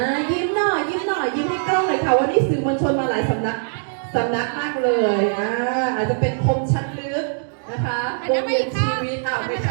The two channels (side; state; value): left; silent; digital silence